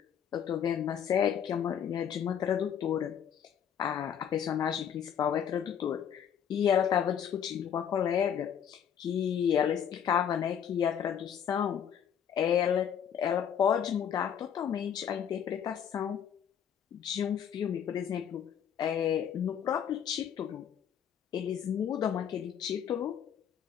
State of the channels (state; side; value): quieter; right; 8.6 dB